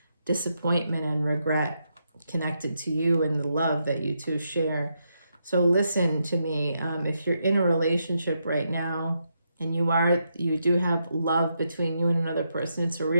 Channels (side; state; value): both; inverted; correlation -0.81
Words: disappointment and regret connected to you and the love that you two share. So listen to me. If you're in a relationship right now and you do have love between you and another person, it's a